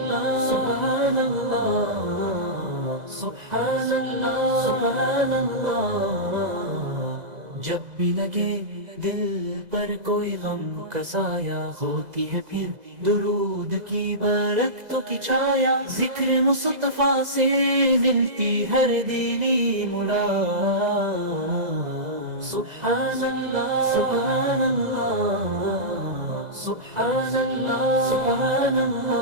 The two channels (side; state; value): left; late; 2.0 ms